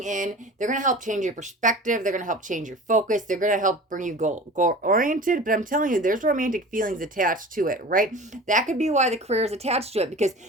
in. They're going to help change your perspective. They're going to help change your focus. They're going to help bring you goal-oriented, but I'm telling you, there's romantic feelings attached to it, right? That could be why the career is attached to it, because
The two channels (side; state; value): both; normal; correlation 0.38